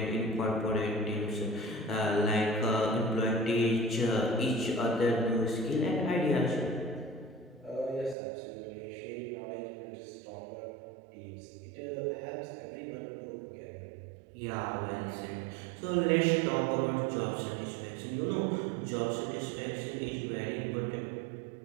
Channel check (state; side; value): drops out; left; at 8.2 s